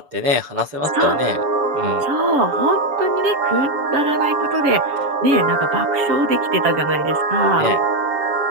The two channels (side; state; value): left; late; 7.0 ms